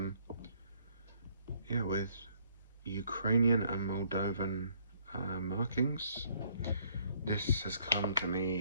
with Ukrainian and Moldovan markings. This has come to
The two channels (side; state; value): both; inverted; correlation -0.65